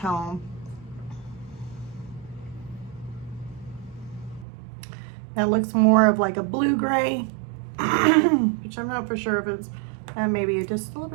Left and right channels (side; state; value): left; drops out; at 4.5 s